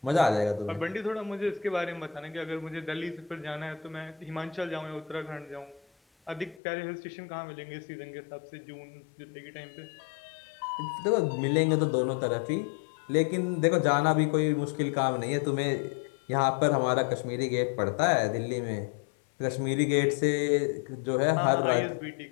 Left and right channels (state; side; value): drops out; right; at 6.6 s